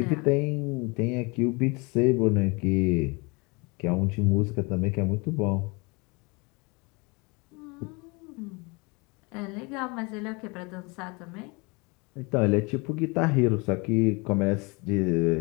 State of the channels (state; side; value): quieter; right; 28.3 dB